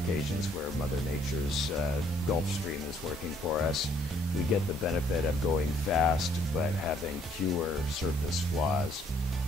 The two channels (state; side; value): normal; both; correlation 0.64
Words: where Mother Nature's Gulf Stream is working for us, we get the benefit of going fast but having fewer surface flaws.